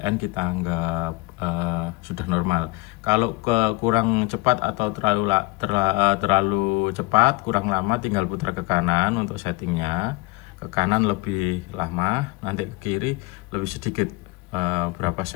kita anggap sudah normal. Kalau kurang cepat atau terlalu cepat, kurang lama, tinggal putar ke kanan untuk settingnya. Ke kanan lebih lama, nanti ke kiri lebih sedikit, berapa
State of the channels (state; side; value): quieter; right; 23.4 dB